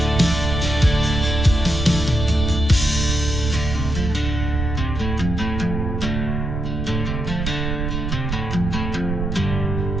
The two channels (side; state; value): right; noise; rumble, 3 dB below the sound